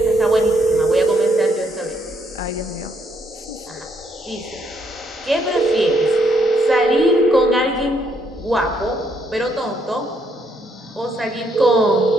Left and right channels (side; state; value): both; normal; correlation 0.72